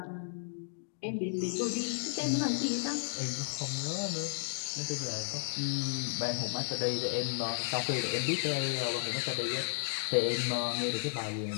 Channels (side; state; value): right; silent; digital silence